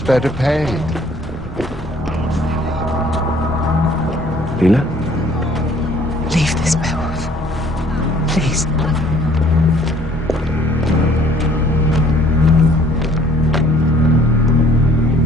better paid. Leela? Leave this, Beowulf. Please.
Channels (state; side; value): normal; both; correlation 0.57